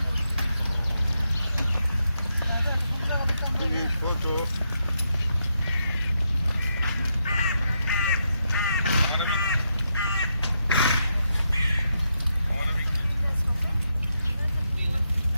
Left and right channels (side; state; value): both; inverted; correlation -0.82